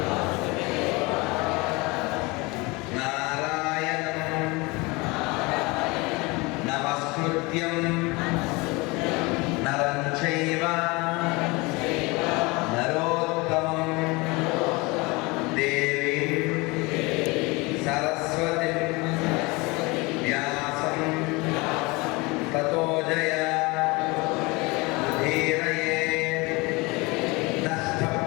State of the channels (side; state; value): right; quieter; 25.1 dB